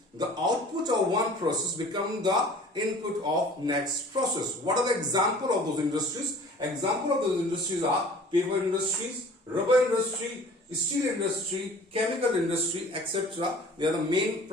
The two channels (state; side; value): normal; both; correlation 0.47